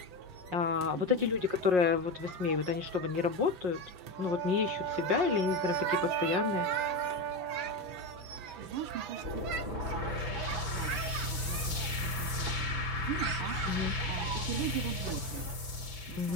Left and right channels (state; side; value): late; left; 5.5 ms